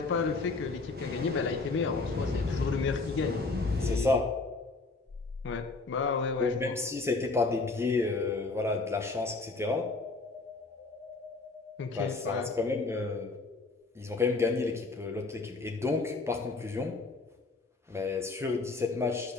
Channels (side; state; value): right; quieter; 3.7 dB